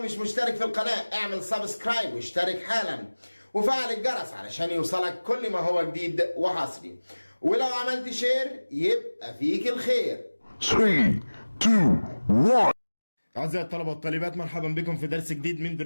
مش مشترك في القناة اعمل سبسكرايب واشترك حالا وفعل الجرس علشان يوصلك كل ما هو جديد وحصري، ولو عملت شير يبقى فيك الخير. 3, 2, 1. أعزائي الطلبة والطالبات، مرحبا بكم في درس جديد من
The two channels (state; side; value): inverted; both; correlation -1.00